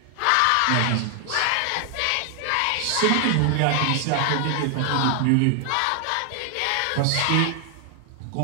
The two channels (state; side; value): different; both; correlation 0.00